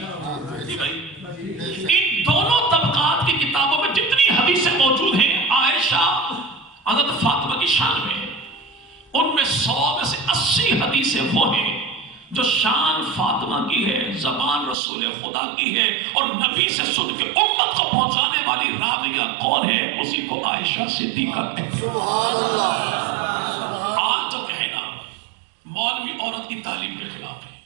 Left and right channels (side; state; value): left; drops out; at 14.8 s